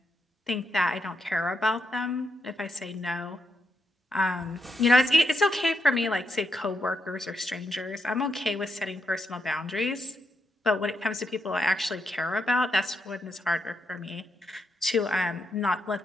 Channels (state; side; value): normal; both; correlation 0.81